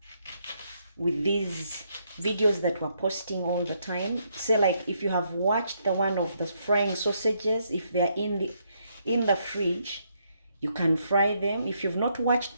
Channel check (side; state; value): both; inverted; correlation -0.75